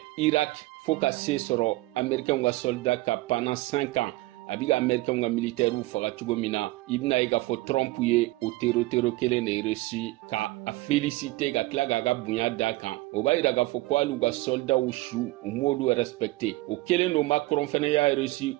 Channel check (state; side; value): quieter; left; 20.0 dB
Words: Irak fo ka se sɔrɔ américain ka soldat ka pendant 5 ans abiga américain ka militaire faga cogo min na ibna i ka fɔ Trump ye o tero kelen de Russie ka a féliciter ka tila ka bonya da kan o b'a yira ka fɔ ko alu ka soldat su u m'olu respecter o kelen no Macron fana y'a Russie